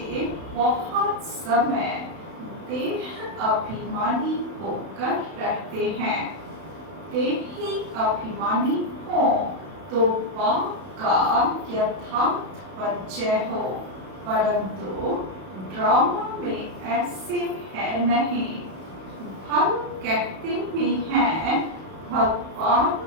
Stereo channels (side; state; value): left; late; 32 ms